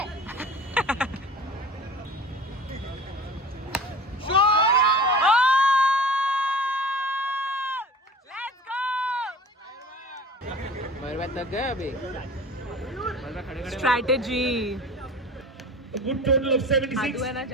तक गए अभी. स्ट्रैटेजी. Good total of 76. आदू है ना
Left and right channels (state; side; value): normal; both; correlation 0.40